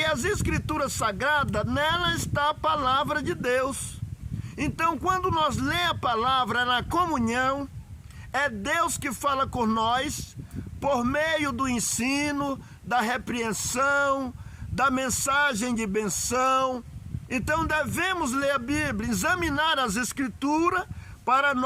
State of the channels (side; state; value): both; identical; correlation 1.00